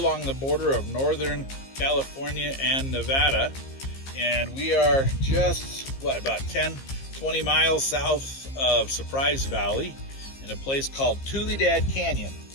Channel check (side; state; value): right; late; 15 ms